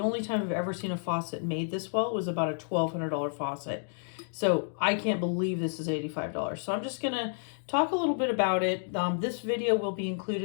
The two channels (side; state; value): right; silent; digital silence